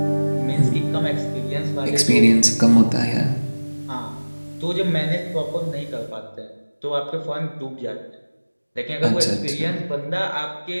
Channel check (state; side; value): inverted; both; correlation -1.00